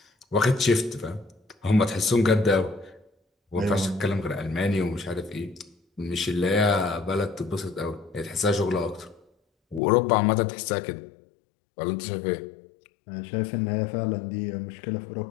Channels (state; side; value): drops out; right; at 9.8 s